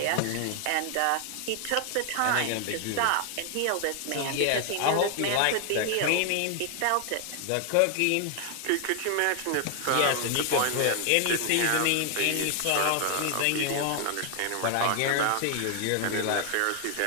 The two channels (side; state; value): both; different; correlation 0.00